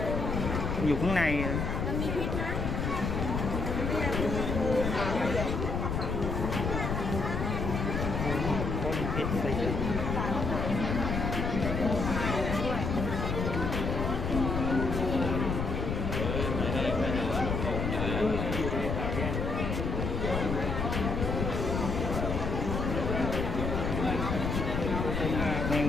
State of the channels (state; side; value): noise; left; rumble, 1 dB below the sound